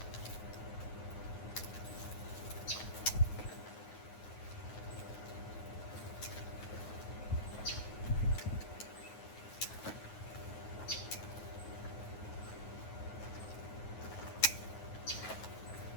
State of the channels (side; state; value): right; late; 9.3 ms